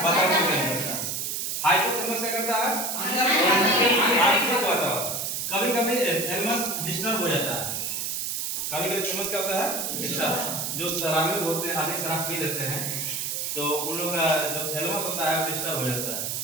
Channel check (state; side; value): noise; right; hiss, 2 dB below the sound